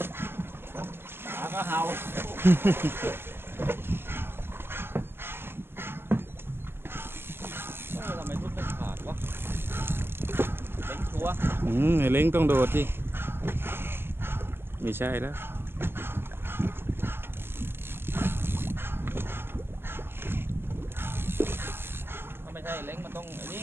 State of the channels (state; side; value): late; left; 0.11 ms